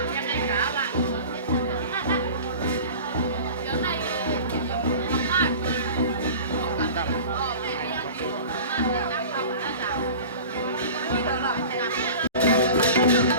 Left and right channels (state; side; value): inverted; both; correlation -0.38